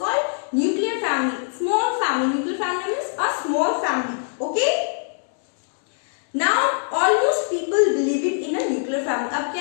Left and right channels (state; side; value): silent; right; 64 dB below the other